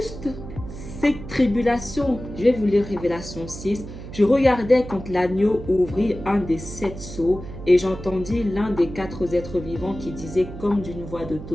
cette tribulation. Je vais vous lire Révélation 6. Je regardais quand l'agneau ouvrit un des 7 sceaux et j'entendis l'un des 4 êtres vivants qui disait comme d'une voix de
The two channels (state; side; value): noise; right; hum, 12 dB below the sound